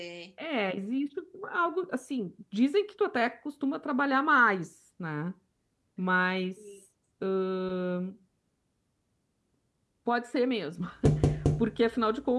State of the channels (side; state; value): both; identical; correlation 1.00